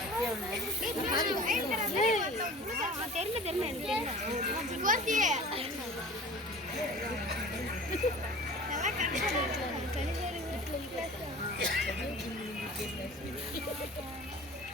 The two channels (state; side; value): normal; both; correlation 0.41